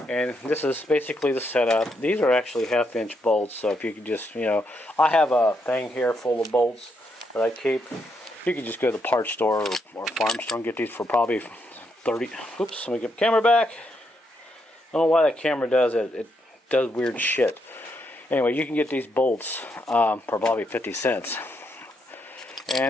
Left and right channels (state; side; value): normal; both; correlation 0.78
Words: and this is basically the setup. These are actually 1/2-inch bolts, so if you could just, I have a thing here full of bolts that I keep. You can just go to the parts store or farm store and get these for probably 30. Oops, let me get the camera back. I don't know why that camera does it. It does weird shit. Anyway, you can get these bolts for probably 50 cents.